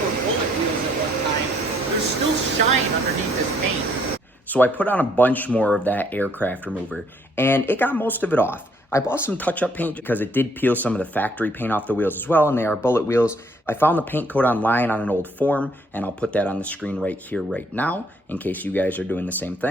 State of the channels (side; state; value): both; normal; correlation 0.66